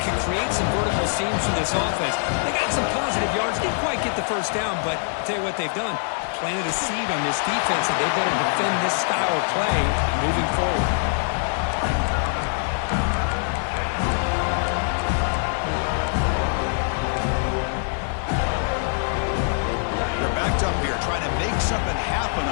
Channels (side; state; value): right; silent; 60 dB below the other